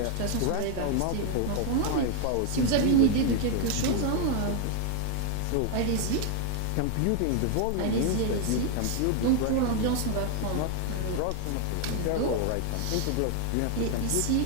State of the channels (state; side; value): different; both; correlation 0.00